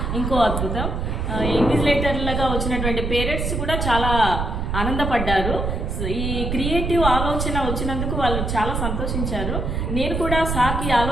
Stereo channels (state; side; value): noise; right; rumble, 2 dB below the sound